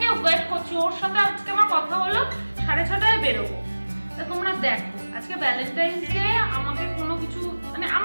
ওয়েট করছি। ওর সাথে আজকে আমার কথা হলো 6:30টায় বেরোবো। তো তোমরা দেখো, আজকে ভ্যালেন্টাইন্স ডে, আমাকে কোনো কিছু মানে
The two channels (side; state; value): both; inverted; correlation -1.00